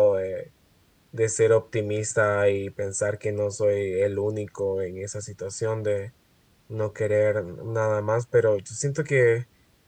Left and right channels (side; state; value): both; identical; correlation 1.00